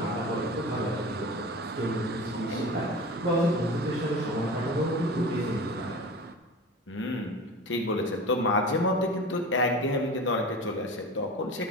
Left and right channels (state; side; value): normal; both; correlation 0.33